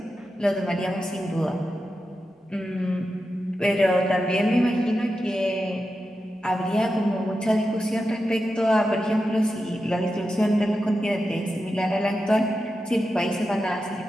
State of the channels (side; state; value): both; normal; correlation 0.90